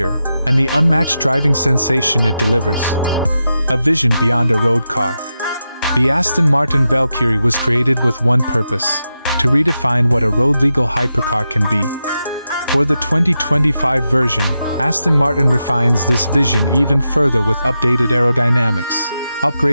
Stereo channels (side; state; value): both; inverted; correlation -0.88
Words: and the unmatched driving sensation it delivers. A vision beyond a road car. The Aston Martin Valkyrie was created with one purpose: to redefine what a road-legal hypercar can be. For the 2025 version, Aston Martin refines this vision even further with updated aerodynamics,